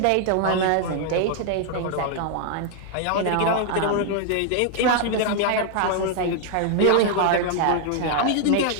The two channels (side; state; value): both; different; correlation 0.00